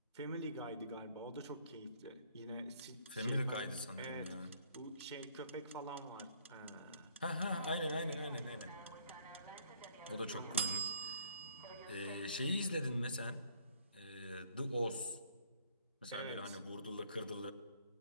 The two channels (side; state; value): both; inverted; correlation -0.62